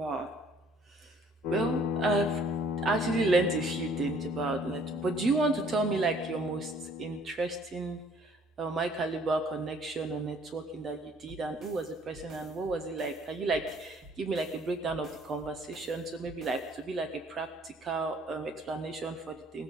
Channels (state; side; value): normal; both; correlation 0.58